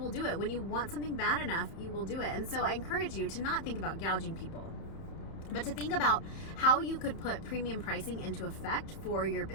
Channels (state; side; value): late; right; 31 ms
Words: do it. When you want something bad enough, you will do it. And so I encourage you to not think about gouging people, but to think about how you could put premium pricing into effect for your